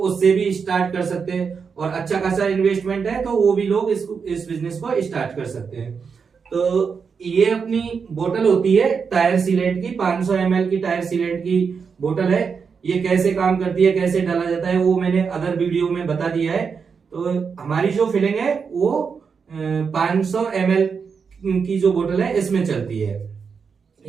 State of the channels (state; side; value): quieter; left; 5.9 dB